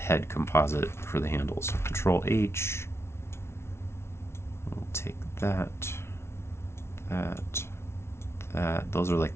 composite for the handles. So Control H, we'll take that, that, that. Those are like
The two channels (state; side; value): late; right; 0.12 ms